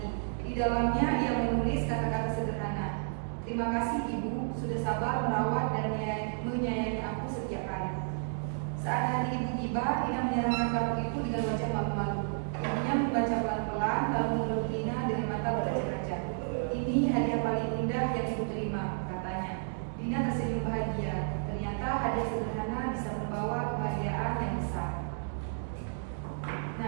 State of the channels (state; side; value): silent; left; digital silence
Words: Di dalamnya ia menulis kata-kata sederhana. Terima kasih ibu, sudah sabar merawat dan menyayangi aku setiap hari. Saat hari ibu tiba, Dina menyerahkan kartu itu dengan wajah malu-malu. Ibunya membaca pelan-pelan, lalu memeluk Dina dengan mata berkaca-kaca. Ini hadiah paling indah yang ibu terima, katanya. Dina tersenyum bahagia. Ternyata hadiah sederhana bisa membawa kebahagiaan yang besar.